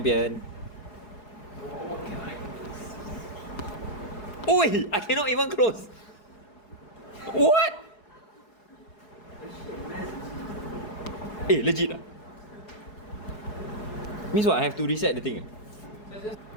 Oi! I cannot even close. What? Eh, legit ah? Means what? I have to reset the thing.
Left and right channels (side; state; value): right; late; 4.7 ms